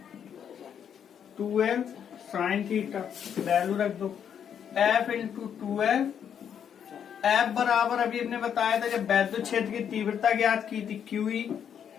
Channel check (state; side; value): quieter; right; 8.4 dB